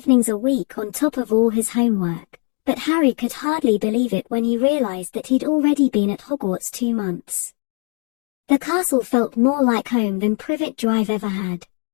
a week on top of all his homework, but Harry could hardly believe it when he realized that he'd already been at Hogwarts 2 months. The castle felt more like home than Privet Drive ever had.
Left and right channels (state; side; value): quieter; right; 36.5 dB